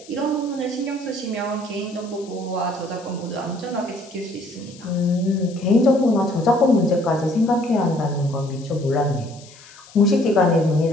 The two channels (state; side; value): noise; left; hiss, 22 dB below the sound